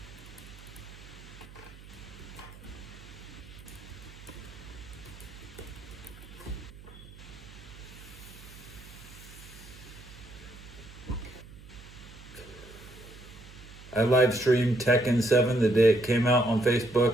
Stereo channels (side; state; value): right; noise; hum, 18 dB below the sound